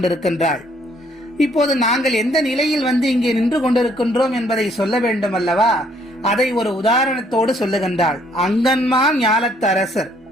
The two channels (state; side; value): normal; both; correlation 0.65